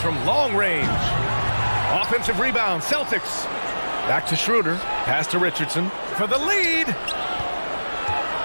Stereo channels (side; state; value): both; inverted; correlation -1.00